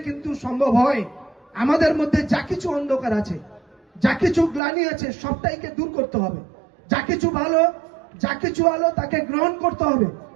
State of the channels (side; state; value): left; drops out; at 4.6 s